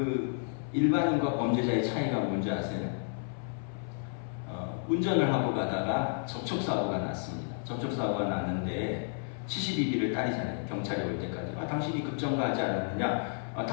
일반인과 범죄자의 차이가 뭔지 아세요? 운전을 하고 가다가 접촉사고가 났습니다. 접촉사고가 났는데 72비를 따리잖아요. 경찰이 올 때까지. 당신이 급정거하지 않았느냐?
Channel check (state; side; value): silent; right; 57 dB below the other